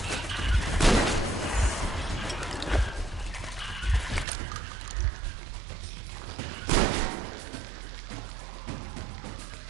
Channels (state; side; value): drops out; left; at 4.2 s